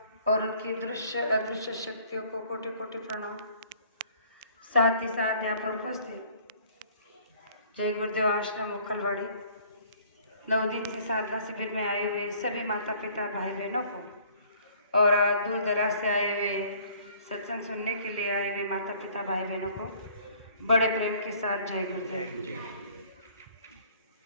और उनकी दृश्य अदृश्य शक्तियों को कोटि कोटि प्रणाम। साथ ही साथ यहाँ पर उपस्थित जय गुरुदेव आश्रम उखलवाड़ी 9 दिन से साधना शिविर में आए हुए सभी माता पिता भाई बहनों को और दूर दराज से आए हुए सत्संग सुनने के लिए आए हुए माता पिता भाई बहनों को बड़े प्रेम के साथ जय गुरुदेव।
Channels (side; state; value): both; inverted; correlation -0.56